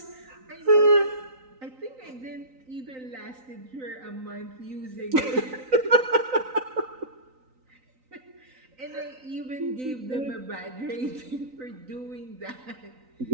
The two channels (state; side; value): late; left; 3.9 ms